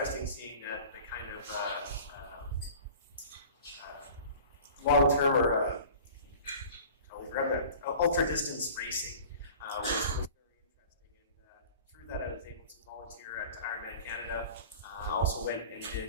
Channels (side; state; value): both; inverted; correlation -0.42